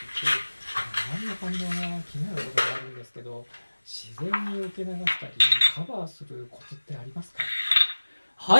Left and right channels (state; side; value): inverted; both; correlation -1.00